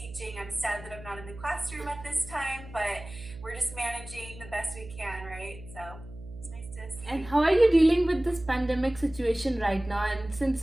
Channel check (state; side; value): noise; right; hum, 15 dB below the sound